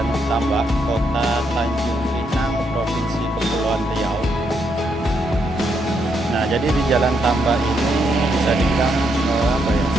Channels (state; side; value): normal; both; correlation 0.77